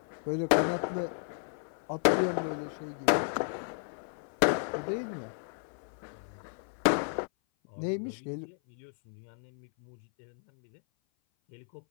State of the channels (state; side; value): silent; right; 56 dB below the other